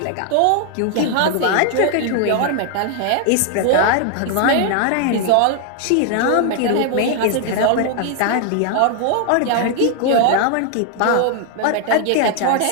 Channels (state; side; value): different; both; correlation 0.00